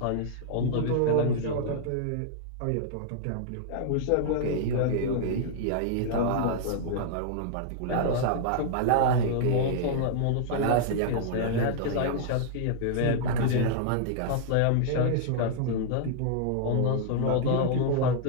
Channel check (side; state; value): both; different; correlation -0.01